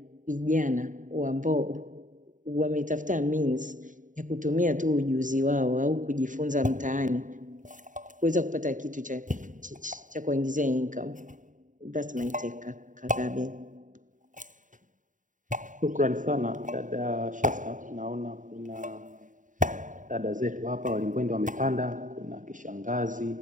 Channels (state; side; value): late; left; 0.37 ms